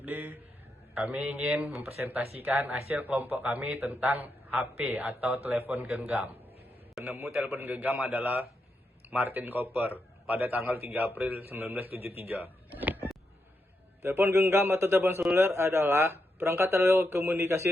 Kami ingin mempresentasikan hasil kelompok kami tentang HP atau telepon genggam. Penemu telepon genggam adalah Martin Cooper pada tanggal 3 April 1973. Telepon genggam atau telepon seluler adalah perangkat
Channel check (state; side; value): normal; both; correlation 0.84